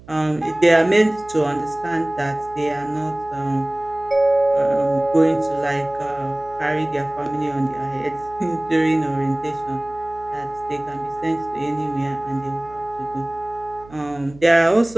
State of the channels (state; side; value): noise; right; hum, 21 dB below the sound